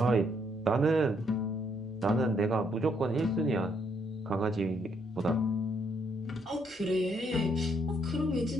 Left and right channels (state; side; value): normal; both; correlation 0.72